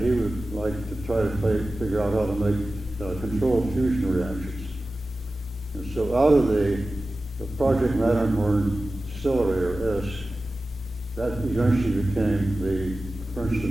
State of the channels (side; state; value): both; normal; correlation 0.95